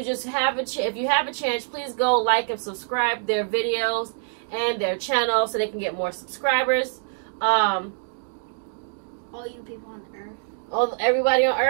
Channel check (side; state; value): left; silent; digital silence